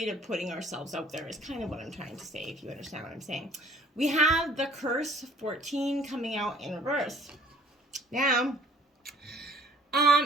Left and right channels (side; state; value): both; normal; correlation 0.56